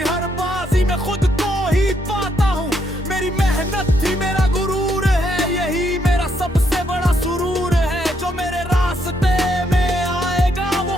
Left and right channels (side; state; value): both; normal; correlation 0.75